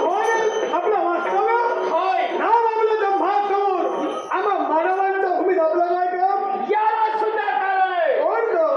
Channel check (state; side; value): identical; both; correlation 1.00